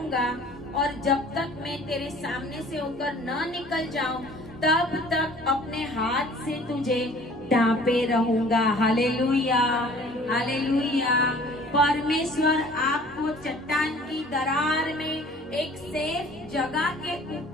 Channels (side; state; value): both; normal; correlation 0.50